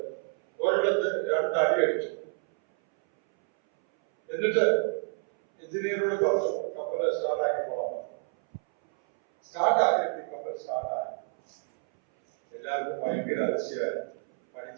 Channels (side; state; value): left; silent; 59 dB below the other